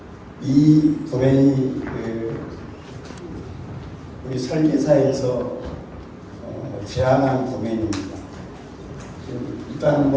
이 도면이 우리 설계사에서 제안한 도면입니다. 일단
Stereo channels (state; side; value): identical; both; correlation 1.00